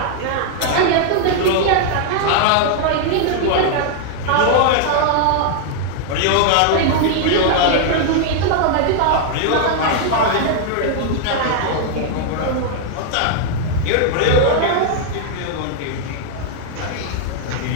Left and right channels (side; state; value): both; different; correlation 0.00